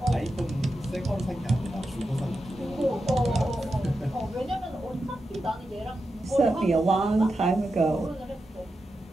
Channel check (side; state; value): both; normal; correlation 0.89